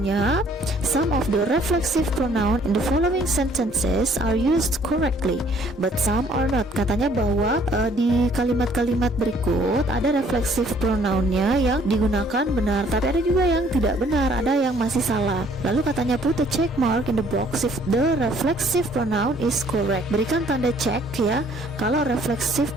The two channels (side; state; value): both; normal; correlation 0.61